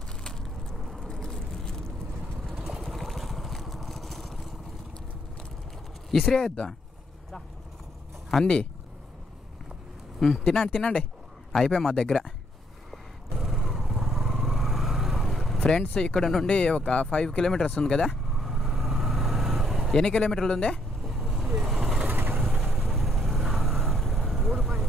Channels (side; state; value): both; normal; correlation 0.71